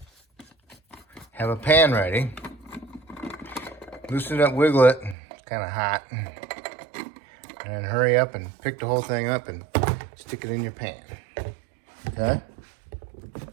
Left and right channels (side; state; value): left; drops out; at 5.2 s